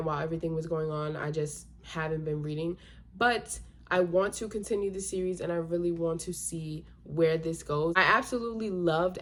while everything was going on, I just haven't been reading. But I want to continue the series, and I really want to see where this goes. I absolutely loved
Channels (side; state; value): both; identical; correlation 1.00